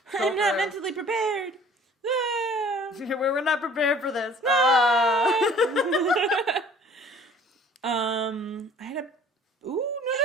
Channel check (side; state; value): both; normal; correlation 0.51